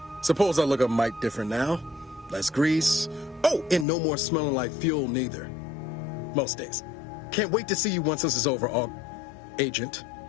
Suppose I look a mite different now. Less grease. Oh, and no more smelling like fuel neither. Most days. Can't wait to see you once this is over, Agent.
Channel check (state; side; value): drops out; right; at 3.9 s